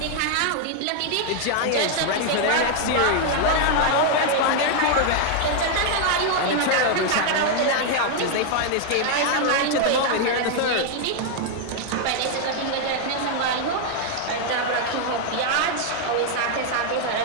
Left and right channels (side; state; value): both; different; correlation 0.00